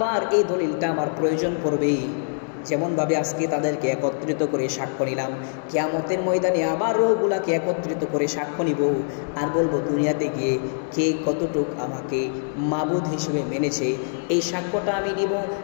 এই দলিলটা আমার প্রয়োজন পড়বে। যেমনভাবে আজকে তাদেরকে একত্রিত করে সাক্ষ্য নিলাম, কিয়ামতের ময়দানে আবার রূহগুলাকে একত্রিত করে সাক্ষ্য নিব, আর বলবো দুনিয়াতে গিয়ে কে কতটুক আমাকে মাবুদ হিসেবে মেনেছে। এই সাক্ষ্যটা আমি নিব।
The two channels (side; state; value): right; silent; 63 dB below the other